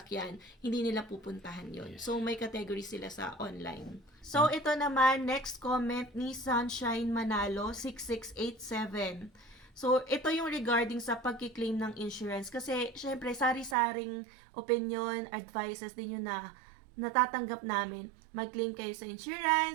hindi nila pupuntahan yon. So, may category sila sa online. So, ito naman, next comment ni Sunshine Manalo, 6687. So, ito yung regarding sa pagkiklaim ng insurance. Kasi, syempre, sari-saring opinion, advices din yun na natatanggap namin. Mag-claim kayo sa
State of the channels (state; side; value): drops out; left; at 13.8 s